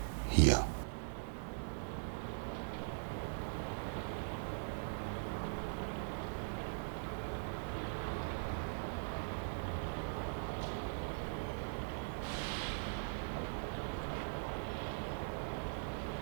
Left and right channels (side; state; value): left; silent; 50 dB below the other